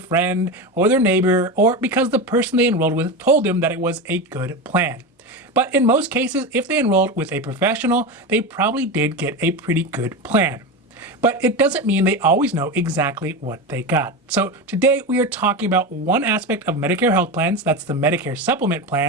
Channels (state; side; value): normal; both; correlation 0.20